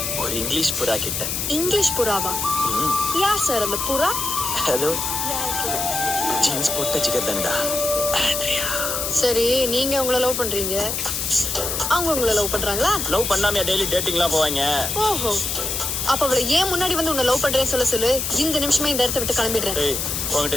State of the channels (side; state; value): left; noise; hiss, 2 dB below the sound